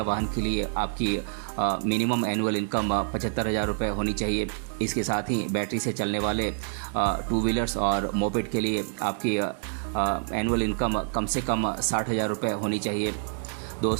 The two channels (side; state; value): left; silent; digital silence